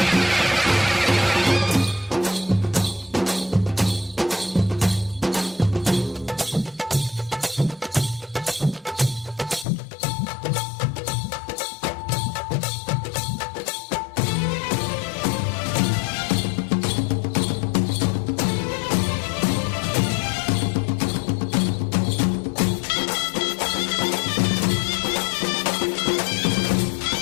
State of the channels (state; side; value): drops out; right; at 9.7 s